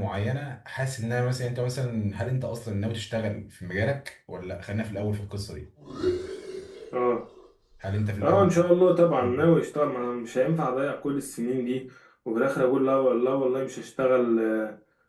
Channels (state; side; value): identical; both; correlation 1.00